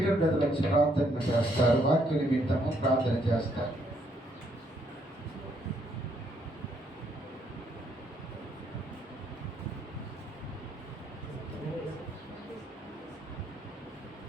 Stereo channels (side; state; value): both; normal; correlation 0.71